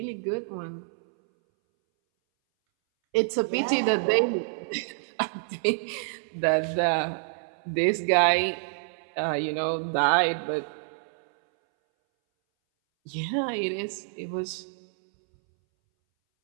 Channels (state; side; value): silent; left; 60 dB below the other